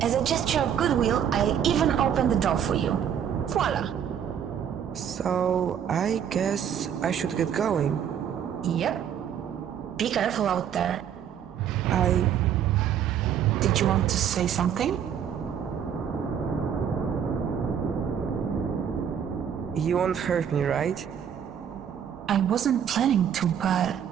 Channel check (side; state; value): left; quieter; 8.7 dB